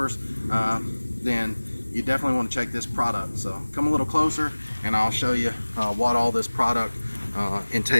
then you definitely want to check this product. So come a little closer and I'll show you what all this product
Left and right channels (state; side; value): inverted; both; correlation -1.00